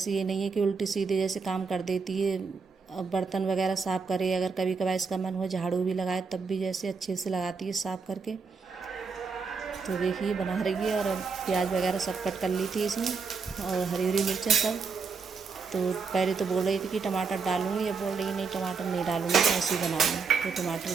ये नहीं है कि उल्टी सीधे जैसे काम कर देती है। अब बर्तन वगैरह साफ़ करे, अगर कभी कभार इसका मन हो झाड़ू भी लगाए तब भी जैसे अच्छे से लगाती है साफ़ करके। तो देखिए बना रही है। और अब प्याज वगैरह सब कट कर ली थी इसमें, और हरी हरी मिर्चें सब। तो पहले तो बोल रही थी कि टमाटर डालूंगी, अब बोल रही नहीं टमाटर नहीं डालूंगी, तो ऐसे ही बनाऊंगी। तो टमाटर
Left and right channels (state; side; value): quieter; left; 5.1 dB